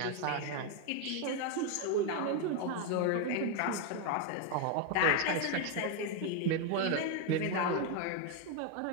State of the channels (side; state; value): both; different; correlation 0.01